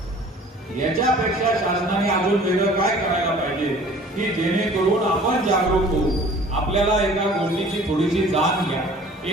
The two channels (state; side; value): normal; both; correlation 0.49